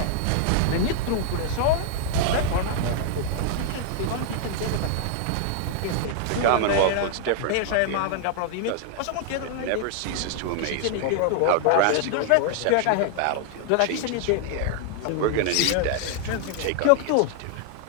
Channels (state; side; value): different; both; correlation 0.00